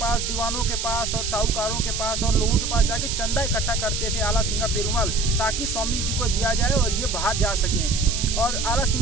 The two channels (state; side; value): noise; right; hiss, 3 dB below the sound